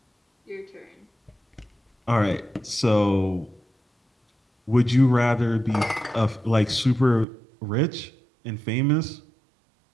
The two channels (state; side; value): drops out; left; at 7.2 s